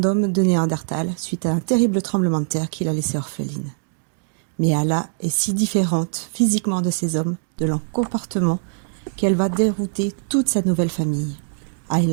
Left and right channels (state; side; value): silent; left; digital silence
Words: de Néandertal suite à un terrible tremblement de terre qui l'a laissée orpheline. Mais Ayla est si différente physiquement de ces hommes, de leur comportement, qu'elle va dérouter toute sa nouvelle famille.